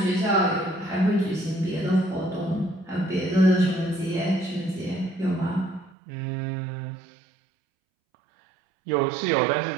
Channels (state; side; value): drops out; left; at 5.9 s